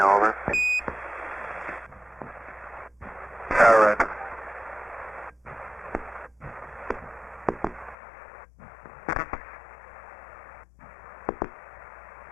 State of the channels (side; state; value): right; drops out; at 8.0 s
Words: over. All right.